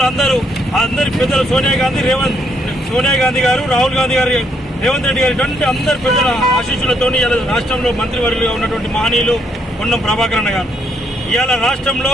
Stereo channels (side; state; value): both; normal; correlation 0.73